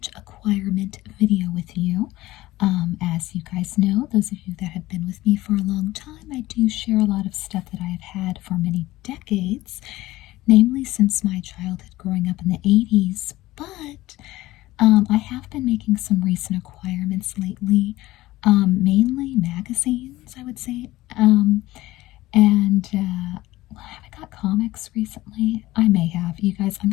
acquirement video with you. As you guys know, those of you that have been with me for a long time, I do share a lot of stuff that I have had for many decades, namely since my childhood growing up in the 80s, but I have been making some recent acquirements lately, mainly magazines, I would say. Have I got comics recently? I may have. You guys, I'm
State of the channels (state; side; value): quieter; right; 17.4 dB